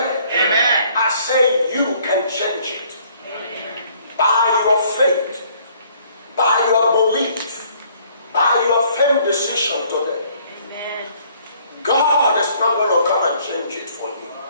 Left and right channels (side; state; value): both; inverted; correlation -0.61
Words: Amen. I say you can change it. By your faith, by your belief, by your firm decision today. God is not going to come and change it for you.